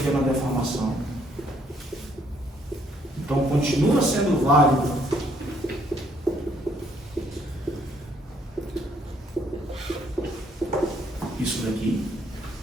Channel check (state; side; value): normal; both; correlation 0.67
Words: deformação. Então continua sendo válido isso daqui.